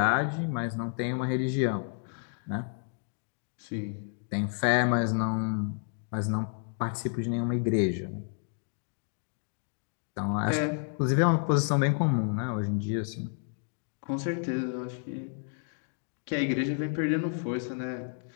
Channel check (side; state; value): right; silent; 57 dB below the other